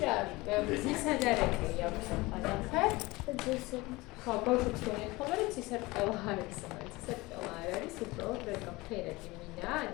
რა, ცისადარები აქვს ახალახე. ხო, ბავშვებს გონიათ ხოლმე, რომ ცისარტყელა არის, ცისარტყელა არ არის, უბრალოდ რეკა ფერადი მინა, ან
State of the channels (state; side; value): quieter; right; 21.8 dB